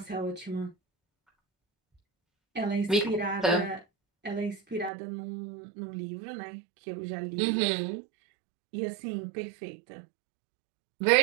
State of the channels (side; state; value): left; drops out; at 4.9 s